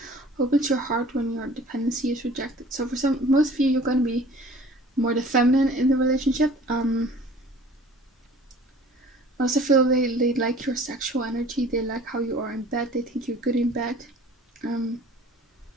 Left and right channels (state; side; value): normal; both; correlation 0.48